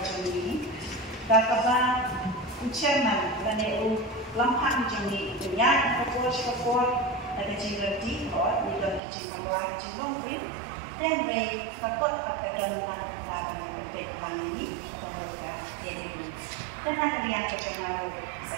ni. Kata ucapan dan eu lampak macam ni. Punya fokus ada jingrati or ni dalam kicin keluar kicin longri. Dan mereka takut pada dalam hal yang berdepan ini atau berdepan ini. Karena kalian kecengaruh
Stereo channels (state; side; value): drops out; left; at 9.0 s